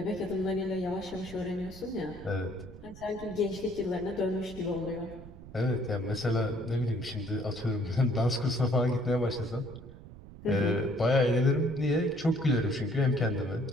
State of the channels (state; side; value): noise; right; rumble, 16 dB below the sound